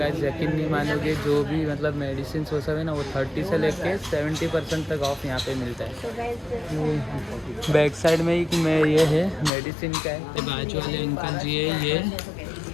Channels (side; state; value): right; drops out; at 9.5 s